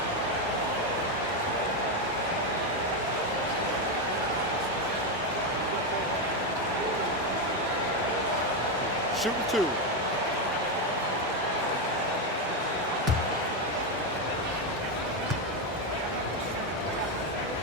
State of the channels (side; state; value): both; normal; correlation 0.08